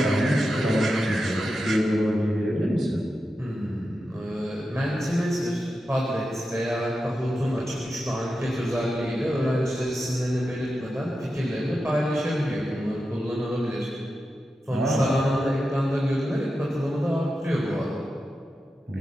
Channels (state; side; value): normal; both; correlation 0.90